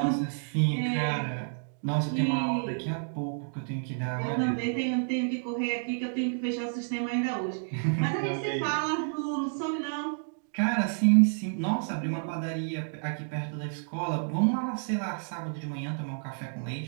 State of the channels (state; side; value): silent; left; digital silence